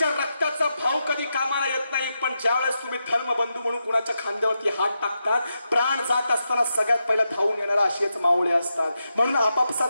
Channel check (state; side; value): inverted; both; correlation -0.86